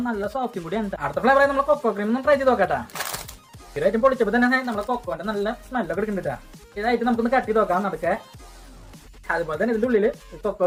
നല്ല സോഫ്റ്റും കൂടിയാണ്. അടുത്ത ഫ്ലേവർ നമ്മൾ കൊക്കോ ക്രീം ഒന്ന് ട്രൈ ചെയ്ത് നോക്കാട്ടാ. ഇതായിട്ട് പൊളിച്ചപ്പോൾ തന്നെ നമ്മളെ കൊക്കോന്റെ നല്ല സ്മെല്ലൊക്കെ എടുക്കുന്നുണ്ടാ. ഇതായിട്ട് നമുക്കൊന്ന് കട്ട് ചെയ്ത് നോക്കാം നടക്കെ. അതുപോലെ തന്നെ ഇതിന്റെ ഉള്ളില്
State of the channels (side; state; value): both; identical; correlation 1.00